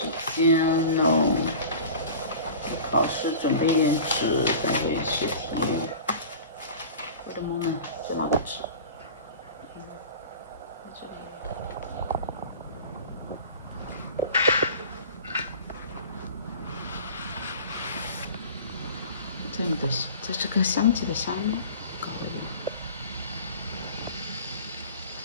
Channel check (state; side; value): inverted; both; correlation -0.38